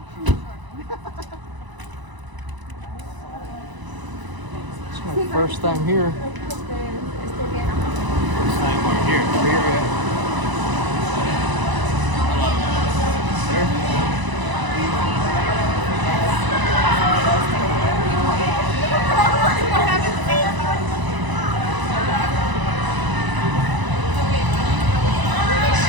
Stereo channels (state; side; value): late; left; 1.0 ms